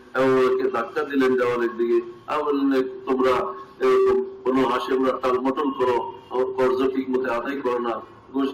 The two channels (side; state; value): both; identical; correlation 1.00